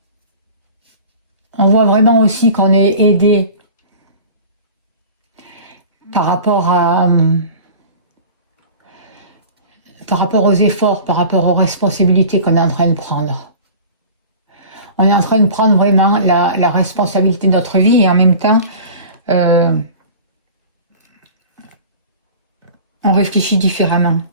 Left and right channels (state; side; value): inverted; both; correlation -0.40